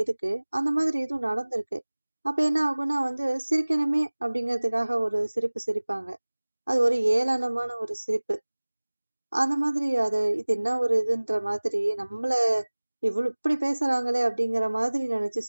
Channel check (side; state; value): both; inverted; correlation -1.00